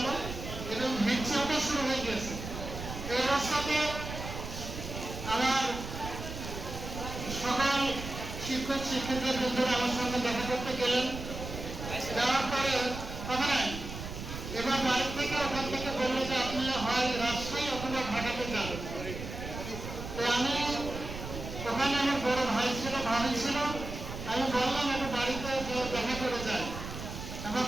এবং হিংসাটা শুরু হয়ে গেছে। এই অবস্থাতে আমার সকল শিক্ষকদের বন্ধুরা আমার সঙ্গে দেখা করতে গেলেন। যাওয়ার পরে কথা নাই, এবার বাড়ি থেকে ওখান থেকে বললো যে আপনি হয় রাজশাহী অথবা ঢাকাতে যান। তো আমি ওখানে আমার বড় ভাই ছিল, ভাবি ছিল, আমি বললাম একটু বাড়িতে দেখা করে যাই। আমার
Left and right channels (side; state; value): right; noise; rumble, 8 dB below the sound